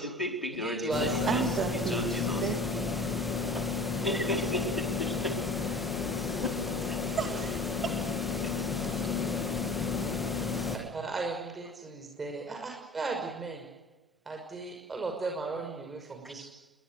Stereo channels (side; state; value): both; normal; correlation 0.42